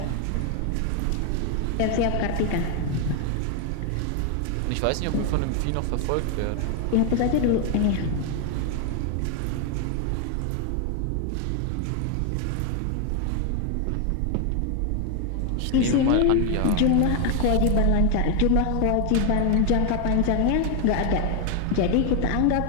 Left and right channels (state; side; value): different; both; correlation 0.01